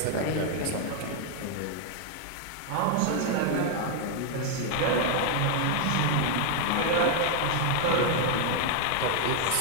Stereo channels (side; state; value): both; different; correlation 0.00